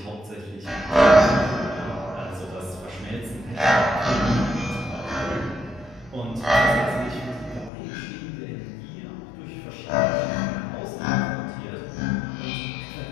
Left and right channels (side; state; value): right; drops out; at 7.7 s